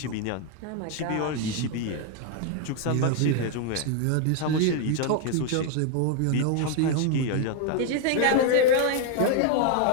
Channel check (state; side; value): different; both; correlation 0.01